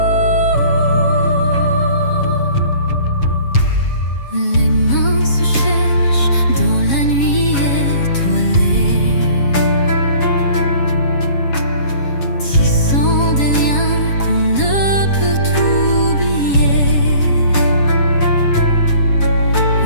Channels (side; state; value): right; late; 7.2 ms